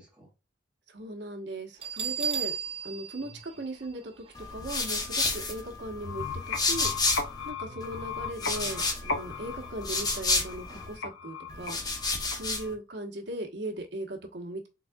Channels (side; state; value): both; normal; correlation 0.09